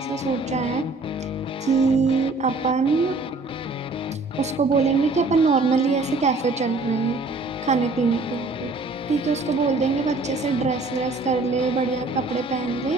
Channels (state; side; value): quieter; left; 3.3 dB